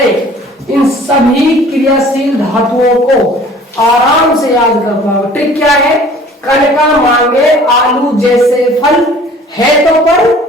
इन सभी क्रियाशील धातुओं को आराम से याद कर पाओगे। ट्रिक क्या है, कण का मांगे आलू जैसे फल है तो पर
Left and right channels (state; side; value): normal; both; correlation 0.50